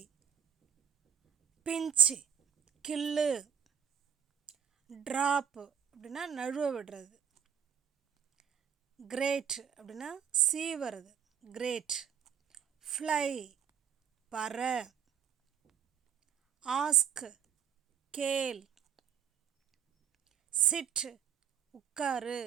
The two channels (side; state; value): left; quieter; 8.2 dB